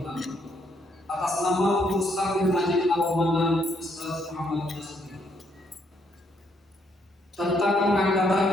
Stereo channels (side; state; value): both; normal; correlation 0.72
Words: atas nama pengurus takmir Masjid Al-Mahan Ustaz Muhammad Nasir tentang